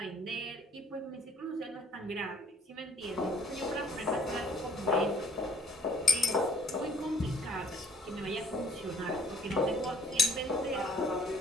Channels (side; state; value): both; normal; correlation 0.59